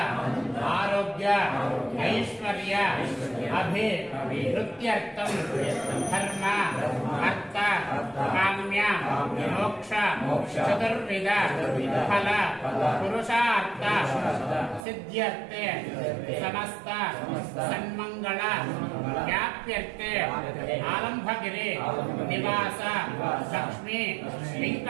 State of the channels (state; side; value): drops out; left; at 14.9 s